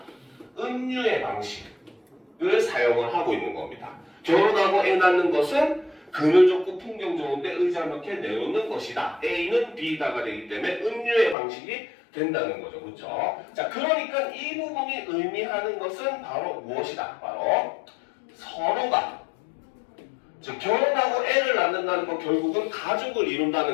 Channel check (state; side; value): drops out; right; at 11.4 s